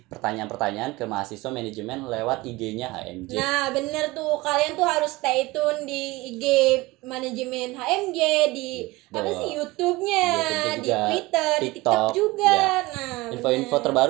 pertanyaan-pertanyaan ke mahasiswa manajemen lewat IG-nya HMJ. Nah bener tuh, kalian tuh harus stay tune di IG manajemen HMJ, di apa sih YouTube-nya, YouTube di juga, Twitter, di TikTok, TikTok juga. ya. Nah Info-info bener.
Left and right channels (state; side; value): quieter; left; 21.3 dB